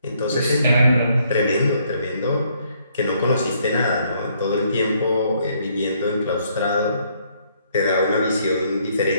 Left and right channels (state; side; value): inverted; both; correlation -0.68